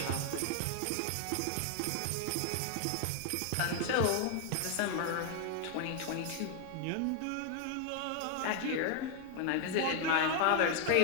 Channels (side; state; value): both; different; correlation 0.00